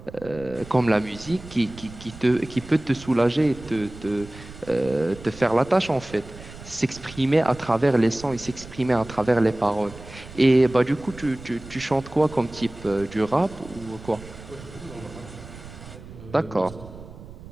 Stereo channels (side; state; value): right; noise; rumble, 16 dB below the sound